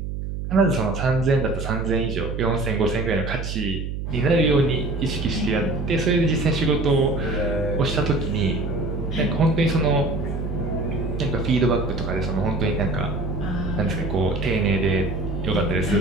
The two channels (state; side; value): noise; right; hum, 5 dB below the sound